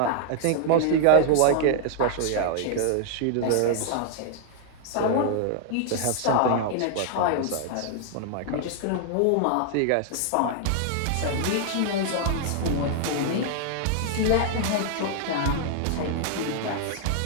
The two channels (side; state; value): both; different; correlation -0.01